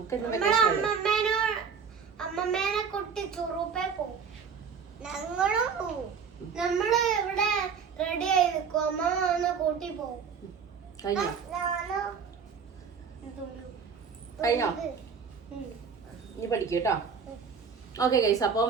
അമ്മമ്മേനെ കുട്ടി ചുറുപ്പേ പോവും. ഞങ്ങളും പോവും. നമ്മള് ഇവിടെ റെഡി ആയി നിൽക്കും. അമ്മ വന്ന് കൂട്ടി പോവും. കഴിഞ്ഞോ? നീ പഠിക്കൂട്ടോ. ഓക്കെ ഗൈസ്, അപ്പം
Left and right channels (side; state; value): left; quieter; 6.2 dB